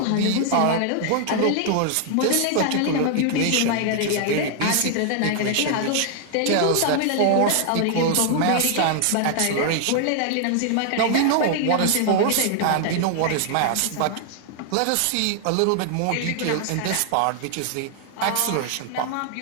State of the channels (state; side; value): different; both; correlation 0.00